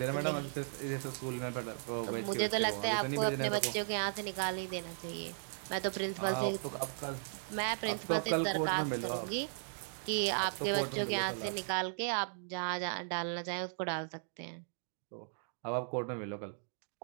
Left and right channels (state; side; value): silent; left; digital silence